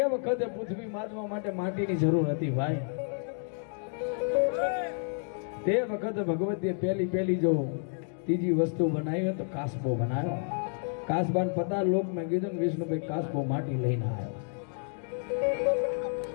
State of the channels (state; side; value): silent; right; 58 dB below the other